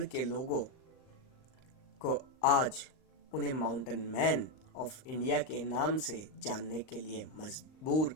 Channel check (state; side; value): late; right; 39 ms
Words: के लोगों को आज उन्हें माउंटेन मैन ऑफ इंडिया के नाम से जानने के लिए मजबूर